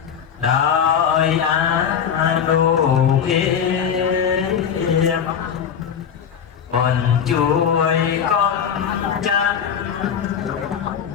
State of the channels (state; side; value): quieter; right; 7.9 dB